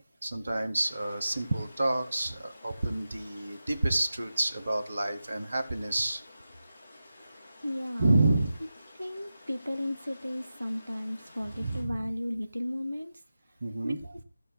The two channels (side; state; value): both; inverted; correlation -0.93